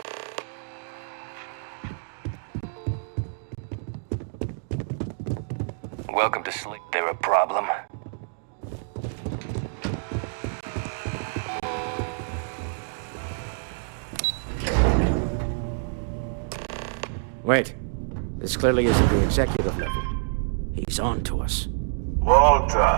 Welcome to sleep. There a problem? Wait. This clearly isn't the executive level. He's on to us.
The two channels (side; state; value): left; silent; digital silence